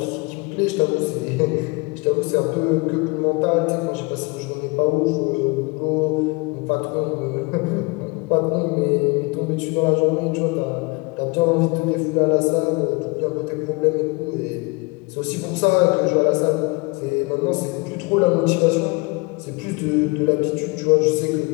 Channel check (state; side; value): quieter; right; 27.4 dB